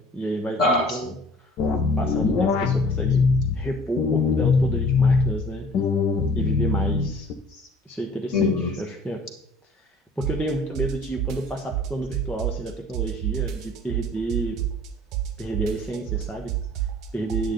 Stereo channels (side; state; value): both; normal; correlation 0.49